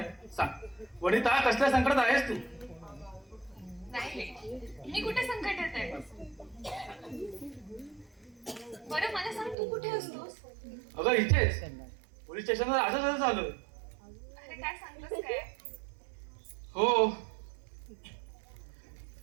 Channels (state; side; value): drops out; left; at 9.6 s